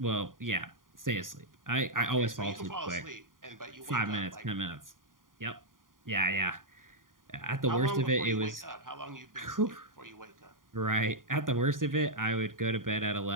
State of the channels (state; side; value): late; left; 0.90 ms